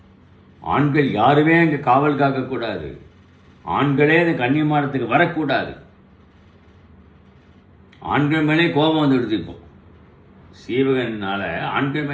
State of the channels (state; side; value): identical; both; correlation 1.00